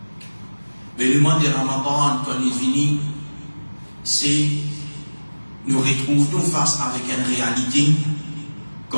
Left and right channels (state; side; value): inverted; both; correlation -1.00